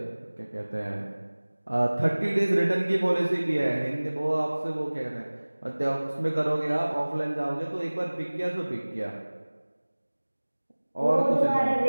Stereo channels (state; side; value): inverted; both; correlation -1.00